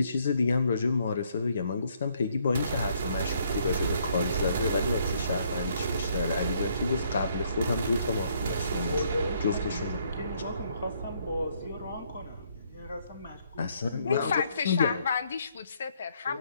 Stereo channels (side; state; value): both; inverted; correlation -0.68